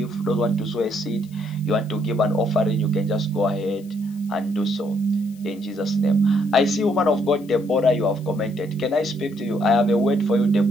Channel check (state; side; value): noise; left; hiss, 27 dB below the sound